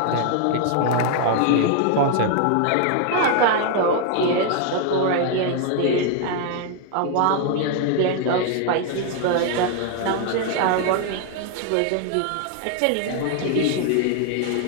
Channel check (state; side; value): different; both; correlation 0.00